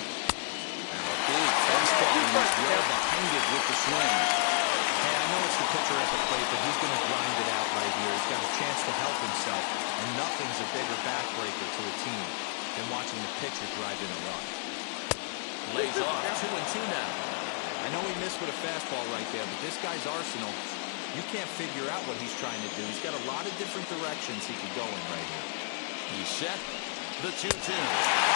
big fastball and he's well behind it with the swing. Hey, I know it's the pitcher at the plate, but he's going to grind it out right here. He's got a chance to help himself, and nothing's a bigger backbreaker to a team than watching the pitcher drive in a run. Lays off 2-2 now. I know he missed with a fastball right there, but this guy's arsenal, you can't figure out what he's trying to do. He's got a lot of different directions he could go in right here. He's set. The 2-2. Swing and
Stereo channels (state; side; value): silent; right; 57 dB below the other